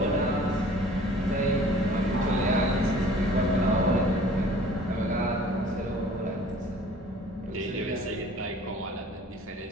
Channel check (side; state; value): both; normal; correlation 0.50